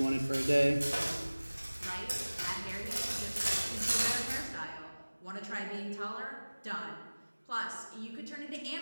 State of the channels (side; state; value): both; inverted; correlation -1.00